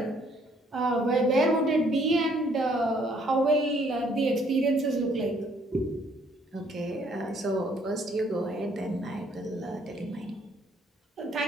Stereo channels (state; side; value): normal; both; correlation 0.64